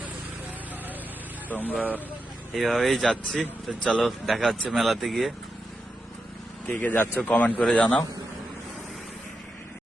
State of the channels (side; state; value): both; normal; correlation 0.87